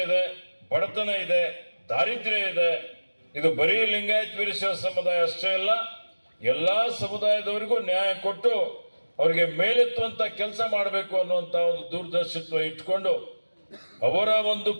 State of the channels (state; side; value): inverted; both; correlation -1.00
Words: ಇದೆ, ಬಡತನ ಇದೆ, ದಾರಿದ್ರ್ಯ ಇದೆ. ಇದು ಬರೀ ಲಿಂಗಾಯತ್ ವೀರಶೈವ ಸಮುದಾಯ ಅಷ್ಟೇ ಅಲ್ಲ, ಎಲ್ಲ ಸಮುದಾಯದವರಿಗೂ ನ್ಯಾಯ ಕೊಟ್ಟು ಅವರಿಗೆ ಮೇಲೆತ್ತುವಂಥ ಕೆಲಸ ಮಾಡಬೇಕು ಅನ್ನುವಂಥ ಒಂದು ದೂರದರ್ಶಿತ್ವ ಇಟ್ಕೊಂಡು ಅವರ ಒಂದು